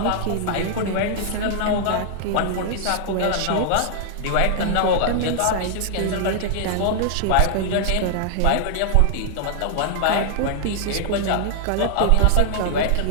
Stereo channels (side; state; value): both; different; correlation -0.01